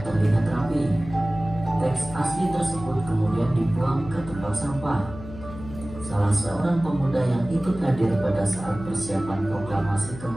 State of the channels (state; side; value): noise; left; hum, 13 dB below the sound